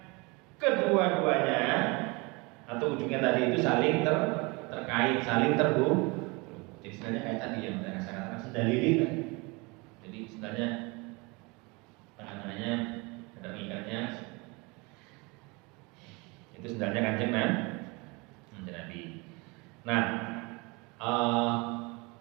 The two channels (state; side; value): quieter; left; 27.2 dB